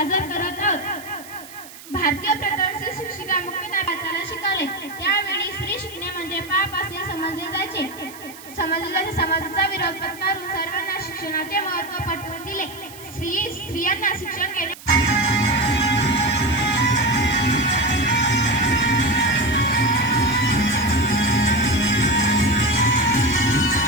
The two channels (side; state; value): right; noise; hiss, 18 dB below the sound